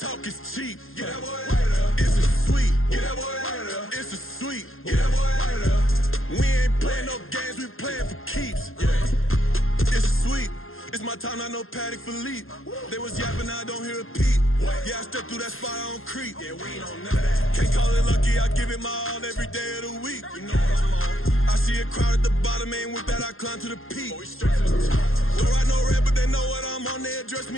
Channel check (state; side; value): late; right; 0.60 ms